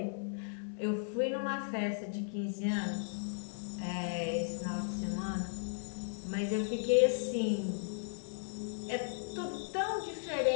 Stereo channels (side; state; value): right; silent; digital silence